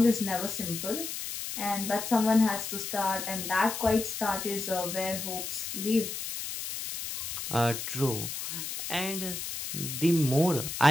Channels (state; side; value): noise; left; hiss, 6 dB below the sound